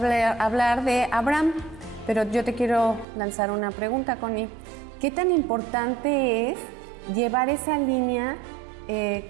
de Abraham, pero yo te quiero lanzar una pregunta, Connie. ¿Qué tan importante es llevar esa línea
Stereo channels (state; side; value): drops out; left; at 3.1 s